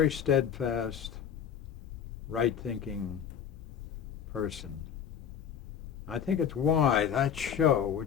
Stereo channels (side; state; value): right; quieter; 8.3 dB